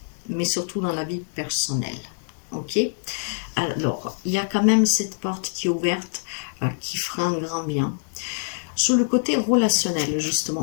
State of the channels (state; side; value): silent; right; digital silence